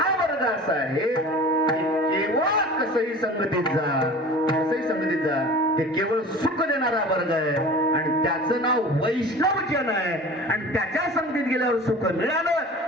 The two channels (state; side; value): normal; both; correlation 0.39